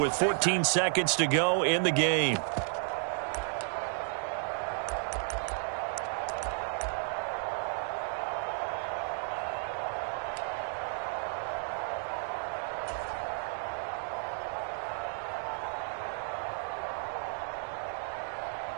14 seconds to go in the game.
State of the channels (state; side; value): silent; left; 56 dB below the other